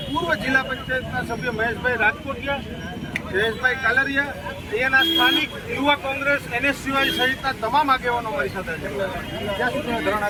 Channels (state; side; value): identical; both; correlation 1.00